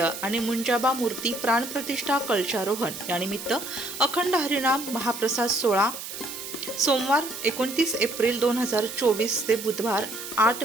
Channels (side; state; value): right; noise; hiss, 9 dB below the sound